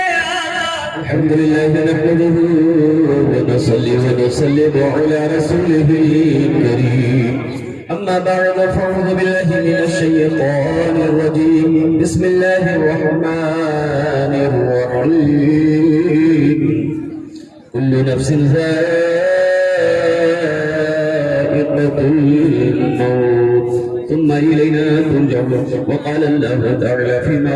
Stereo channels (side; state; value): both; identical; correlation 1.00